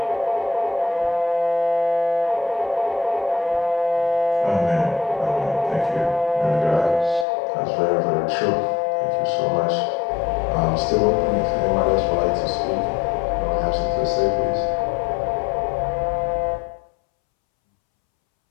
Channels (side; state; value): right; drops out; at 7.2 s